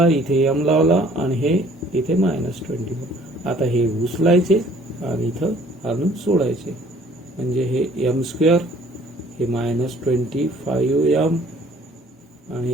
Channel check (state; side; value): normal; both; correlation 0.56